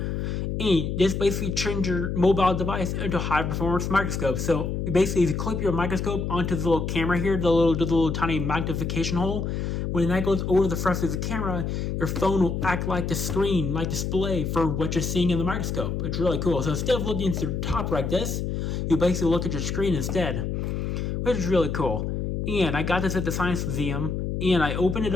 And this basically turns your mobile device into a high-performance microscope. So basically, if you clip your microscope onto the little camera here, the little tiny magnification hole, when that goes over the front of the camera, your phone will act like the screen, like display for what you're seeing in the microscope. It's really cool. So instead of looking into the top like this, you basically look at your screen instead, which is really cool. And I got this at the Science Museum, and I opened it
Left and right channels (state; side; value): noise; left; hum, 2 dB below the sound